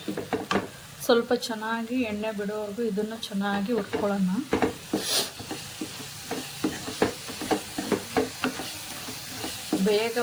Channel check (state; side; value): identical; both; correlation 1.00